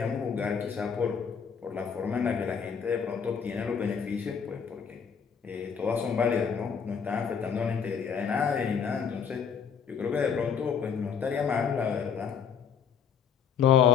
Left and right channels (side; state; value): right; quieter; 7.0 dB